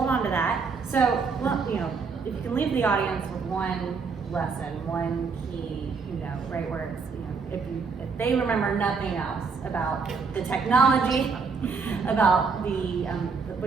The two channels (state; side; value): quieter; left; 5.1 dB